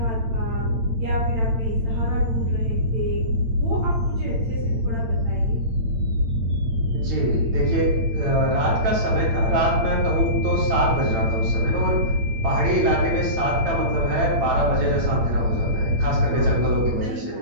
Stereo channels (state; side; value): late; left; 8.8 ms